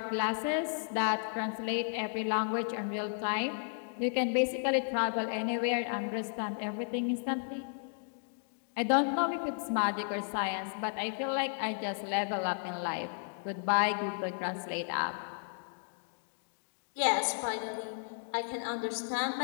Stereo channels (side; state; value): right; silent; digital silence